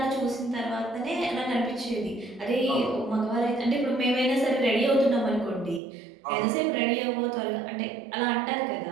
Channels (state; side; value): drops out; left; at 5.8 s